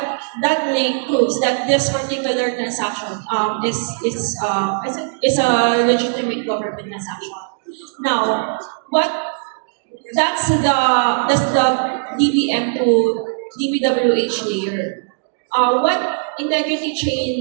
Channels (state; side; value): silent; left; digital silence